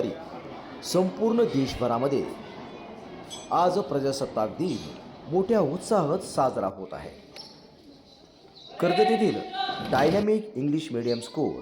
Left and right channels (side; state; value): both; identical; correlation 1.00